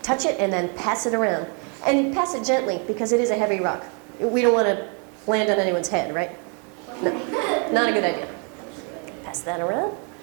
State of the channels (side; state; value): left; quieter; 37.5 dB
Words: touch it, and then pass it around. And pass it gently because it is a heavy rock. We don't want to land on anyone's head, right? No, not a good idea. Pass that around.